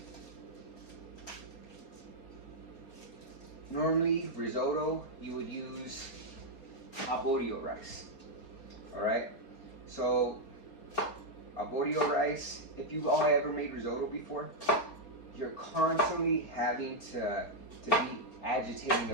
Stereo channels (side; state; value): right; late; 4.3 ms